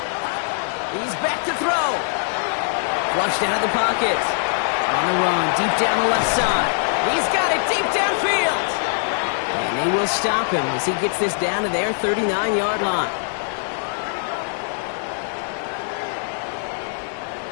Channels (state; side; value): silent; right; 63 dB below the other